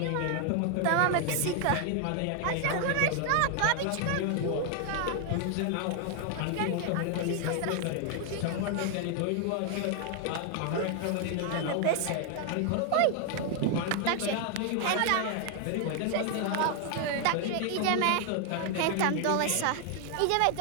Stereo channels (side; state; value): both; different; correlation 0.00